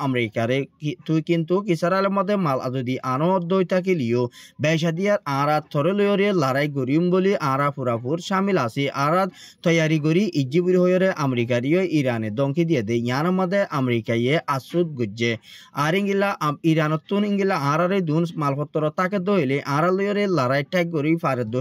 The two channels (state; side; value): identical; both; correlation 1.00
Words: আমেরিকারে তুই কিন্তু ইসরায়েলের মধ্যে মাল যদি আনো দইতাকিলিও বেশা দিয়ার আরা থরে লয়রে লড়াই করিম বলি আরা পুরাপুর শামিল আছে আরা তৈয়ারি করি ইজিবুর হইরে আমেরিকারিও ইরানে দমকি দিয়ে দে ইয়ার মধ্যে আমেরিকায়ে আসুদ গুজ্জে আর ইঙ্গিলা ইরানতুন ইঙ্গিলা আরারে দুন মালপত্র তাকে দইলে আরা লয়রে লড়াই ঠাক করি ফারে